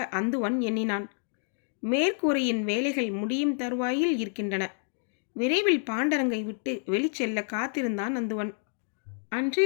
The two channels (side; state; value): right; silent; 58 dB below the other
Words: அந்துவன் எண்ணினான். மேற்கூரையின் வேலைகள் முடியும் தருவாயில் இருக்கின்றன. விரைவில் பாண்டரங்கை விட்டு வெளிச்செல்ல காத்திருந்தான் அந்துவன்.